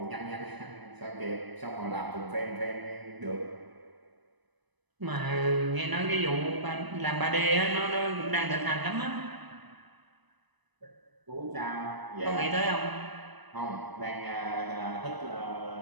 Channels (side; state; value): left; late; 1.0 ms